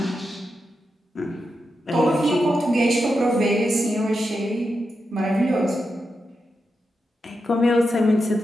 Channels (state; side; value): normal; both; correlation 0.87